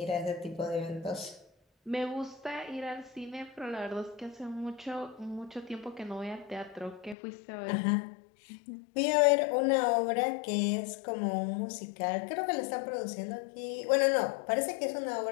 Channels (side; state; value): right; drops out; at 7.2 s